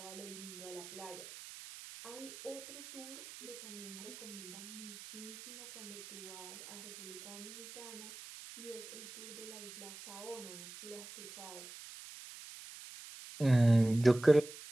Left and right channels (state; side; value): noise; right; hiss, 13 dB below the sound